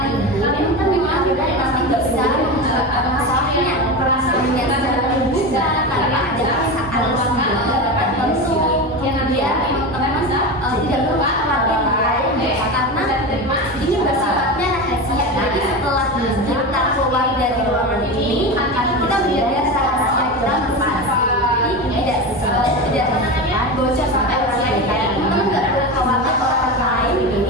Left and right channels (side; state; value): both; normal; correlation 0.22